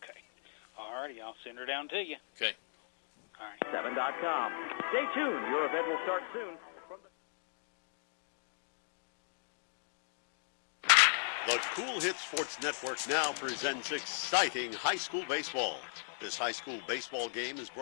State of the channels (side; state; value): right; silent; digital silence